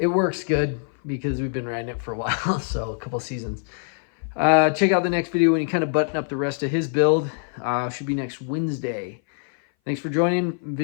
works good because we've been riding it for a while, so a couple seasons. Check out the next video when you kind of button up the rest of his build. Should be next Wednesday. Thanks for joining.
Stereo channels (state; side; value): silent; right; 58 dB below the other